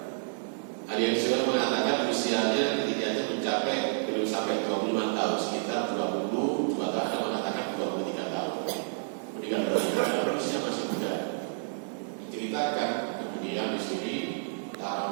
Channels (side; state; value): left; silent; digital silence